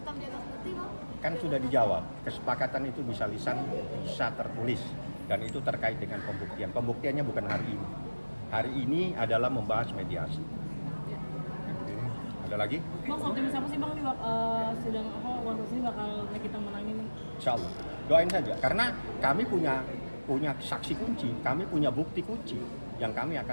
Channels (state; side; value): inverted; both; correlation -1.00